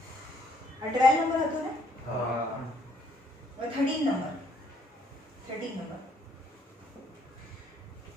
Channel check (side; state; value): both; normal; correlation 0.67